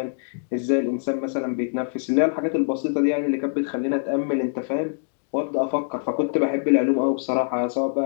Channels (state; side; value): silent; right; digital silence